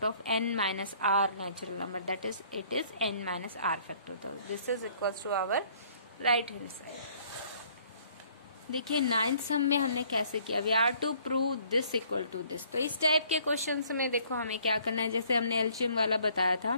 of n minus R natural number, that is it is n minus R factorial. This is equals to our right hand side. देखिए 9th sum में हमने कैसे किया, we are to prove this equal to this. तो इस type के questions में देखो हमें क्या करना है, जैसे हमने एलसीएम वाला बताया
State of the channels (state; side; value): inverted; both; correlation -0.60